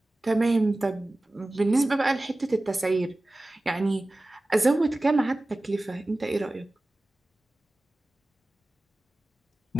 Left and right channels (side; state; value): both; normal; correlation 0.97